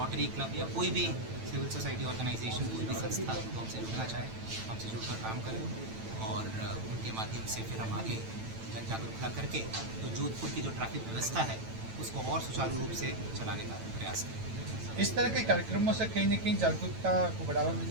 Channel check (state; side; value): late; left; 9.0 ms